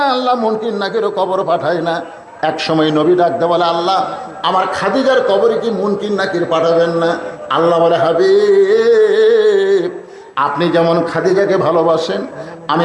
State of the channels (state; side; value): identical; both; correlation 1.00